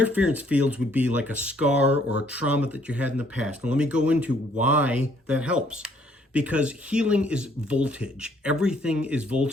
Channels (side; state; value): both; normal; correlation 0.65